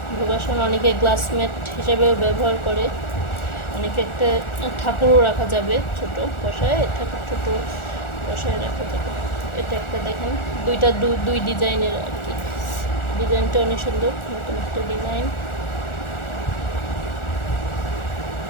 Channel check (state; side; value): late; right; 1.4 ms